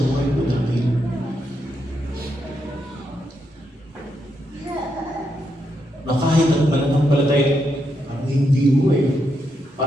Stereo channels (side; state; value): both; normal; correlation 0.81